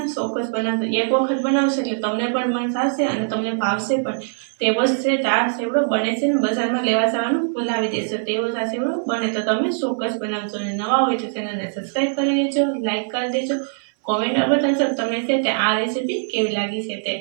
ચોક્કસ બનાવશો, એક વખત બનાવશો એટલે તમને પણ મન થશે અને તમને ભાવશે પણ। તેવો જ છે આ ચેવડો બને છે ને બજારમાં લેવા જવાનું ભૂલાવી દેશો, તેવો જ આ ચેવડો બને તો તમે ચોક્કસ બનાવશો। અને નવા હોય તો ચેનલને સબસ્ક્રાઈબ કરી દેજો, લાઈક કરી દેજો, કોમેન્ટ બતાવશો તમને છે તે આ રેસીપી કેવી લાગી છે તે।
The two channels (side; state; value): left; silent; 65 dB below the other